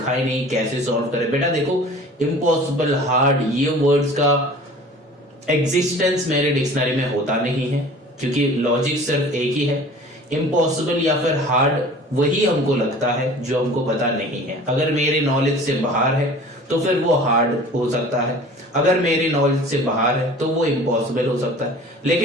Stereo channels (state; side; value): normal; both; correlation 0.44